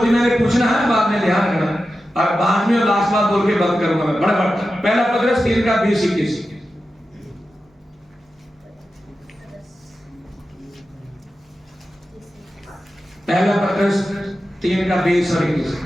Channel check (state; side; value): normal; both; correlation 0.92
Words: दी मैंने, पूछना है बाद में, ध्यान रखना। और बाद में लास्ट बात बोल के बंद करूंगा मैं फटाफट। पहला पत्रस 3:20-21। पहला पत्रस 3:20-21।